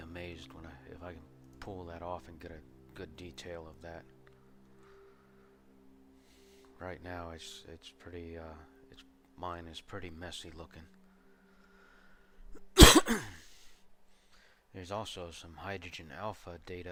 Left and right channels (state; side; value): identical; both; correlation 1.00